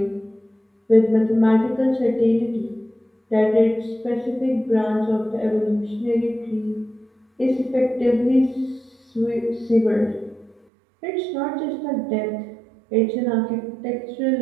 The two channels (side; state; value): left; drops out; at 10.6 s